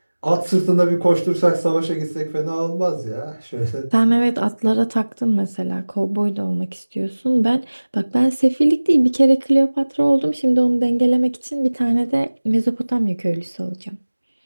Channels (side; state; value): both; inverted; correlation -1.00